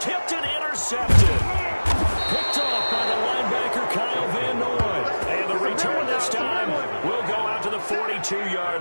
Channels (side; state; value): both; inverted; correlation -1.00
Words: and intercepted. Picked off by the linebacker, Kyle Van Noy. And the return this time will go out to the